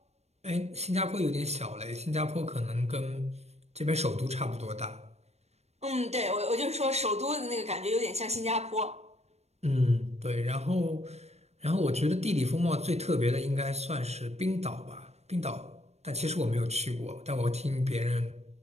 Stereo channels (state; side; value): late; left; 0.31 ms